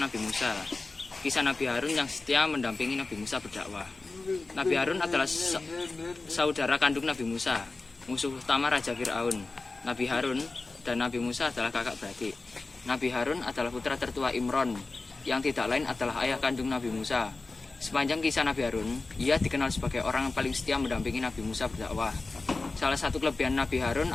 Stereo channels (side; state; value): right; quieter; 3.6 dB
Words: Nabi Musa. Kisah Nabi Harun yang setia mendampingi Nabi Musa berdakwah. Nabi Harun adalah saudara kandung Nabi Musa, musuh utama Raja Fir'aun. Nabi Harun dan Nabi Musa adalah kakak beradik. Nabi Harun adalah putra tertua Imron, yang tidak lain adalah ayah kandung Nabi Musa. Sepanjang kisah Nabi Harun, ia dikenal sebagai orang yang paling setia mendampingi Nabi Musa berdakwah. Salah satu kelebihan Nabi Harun